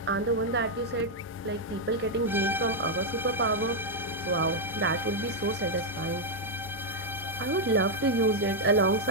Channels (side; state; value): both; normal; correlation -0.02